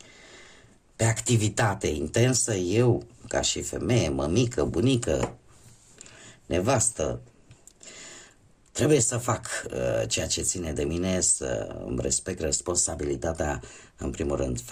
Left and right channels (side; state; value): both; identical; correlation 1.00